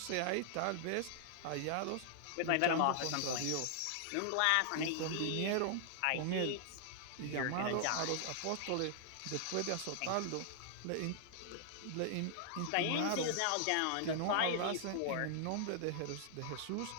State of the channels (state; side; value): different; both; correlation -0.01